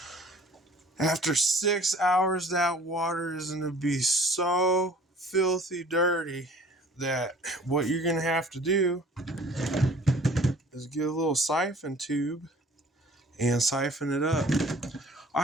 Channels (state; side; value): normal; both; correlation 0.51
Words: After 6 hours, that water is going to be so filthy dirty that what you're going to have to do is get a little siphon tube and siphon it up. I